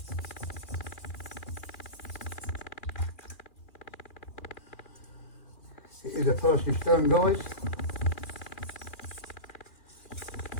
It is a thirsty stone guys.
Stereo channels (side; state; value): right; late; 2.4 ms